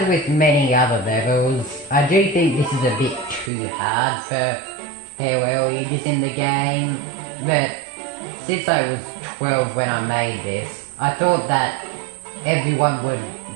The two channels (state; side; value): drops out; left; at 3.5 s